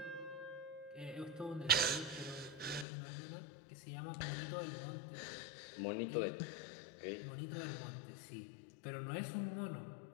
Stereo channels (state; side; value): drops out; right; at 2.9 s